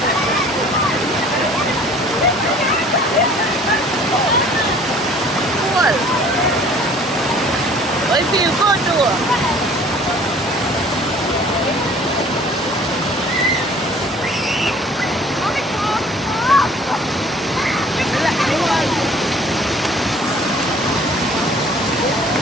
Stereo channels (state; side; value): normal; both; correlation 0.52